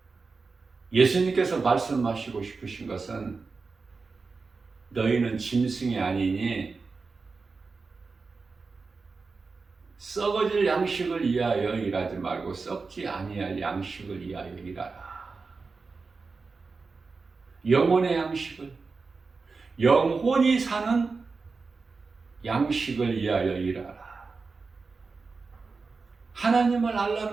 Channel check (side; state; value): left; quieter; 4.4 dB